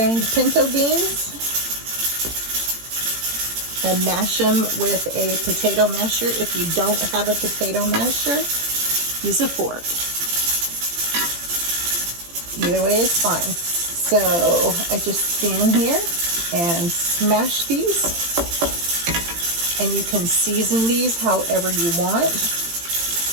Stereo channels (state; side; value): late; left; 18 ms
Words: pinto beans. And mash them with a potato masher. If you don't have a potato masher, use a fork. Either way is fine. So I just stand here and smash these. And you can season these however you want,